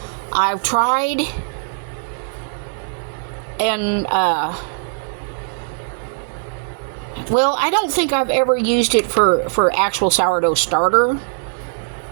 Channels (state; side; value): silent; left; digital silence